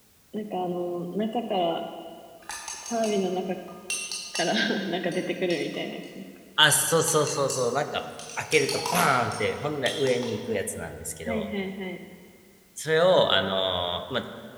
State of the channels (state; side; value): identical; both; correlation 1.00